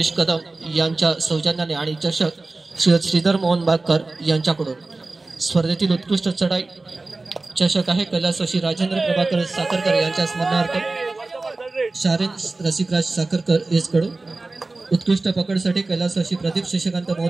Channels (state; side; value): quieter; left; 3.3 dB